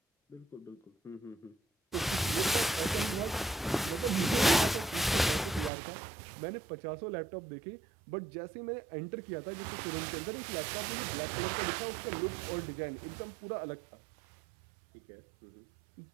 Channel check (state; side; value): drops out; left; at 5.7 s